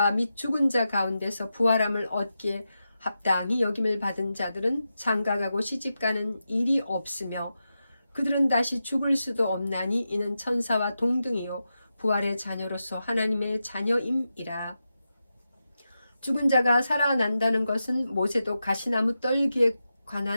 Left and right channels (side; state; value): both; inverted; correlation -0.89